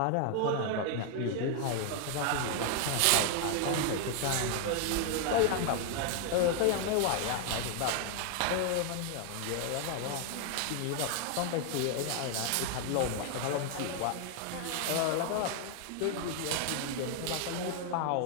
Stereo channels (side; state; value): both; different; correlation 0.00